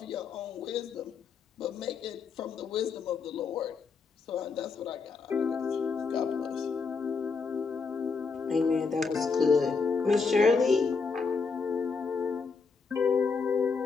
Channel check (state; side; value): quieter; right; 4.9 dB